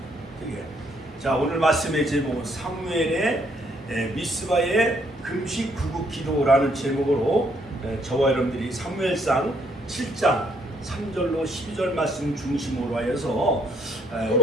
되게. 자, 오늘 말씀의 제목은 사무엘의 미스바의 금식 구국 기도라는 제목으로 저와 여러분들이 사무엘상 7장 3절로 12절 말씀 중심으로 하여서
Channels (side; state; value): both; normal; correlation 0.69